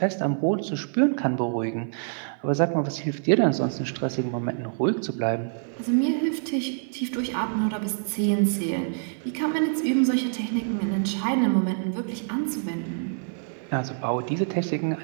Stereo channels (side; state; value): left; silent; 57 dB below the other